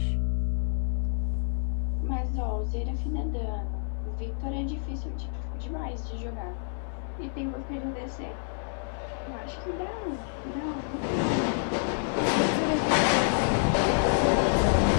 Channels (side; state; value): right; silent; 59 dB below the other